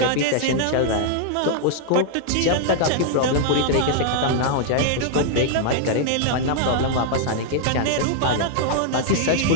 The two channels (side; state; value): both; different; correlation -0.01